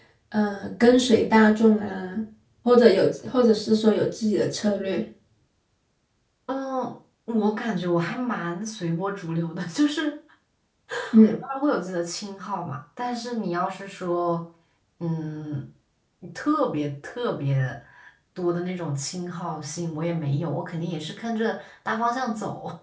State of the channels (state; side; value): identical; both; correlation 1.00